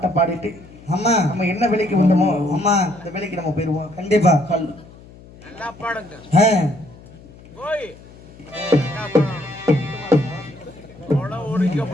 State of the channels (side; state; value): left; noise; hum, 21 dB below the sound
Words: பாடிட்டு ஆமா நம்ம என்ன வேலைக்கு வந்தோமோ ஆமா அந்த வேலைக்கு நம்ம போயிருவோம். கண்டிப்பா நல்லா பாடுங்க. ஓய் நல்லா பாடணும். கொடை